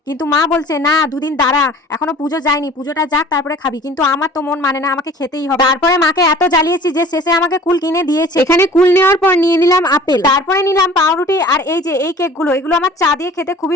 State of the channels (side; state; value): both; normal; correlation 0.46